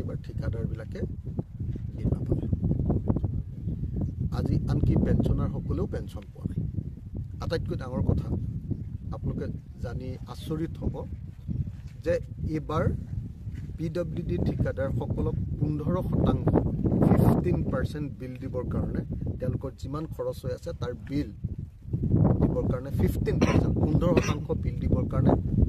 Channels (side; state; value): both; identical; correlation 1.00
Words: ঠিকাদাৰবিলাকে বিল নাপালে আজি আনকি পেঞ্চনাৰসকলেও পেঞ্চন পোৱা নাই আটাইতকৈ ডাঙৰ কথা আপোনালোকে জানি আচৰিত হ'ব যে এইবাৰ PWD ঠিকাদাৰসকলক 15% বিল দিবৰ কাৰণে তেওঁলোকৰ যিমান খৰচ হৈ আছে তাৰ বিল দিবৰ কাৰণে 15% বিল দিবৰ কাৰণে